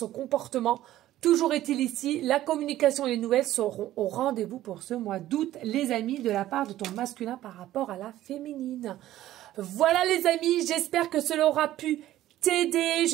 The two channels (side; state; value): left; quieter; 14.0 dB